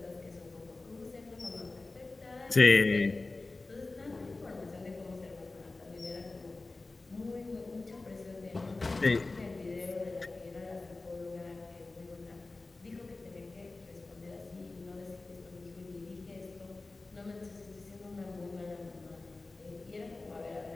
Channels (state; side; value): quieter; right; 3.4 dB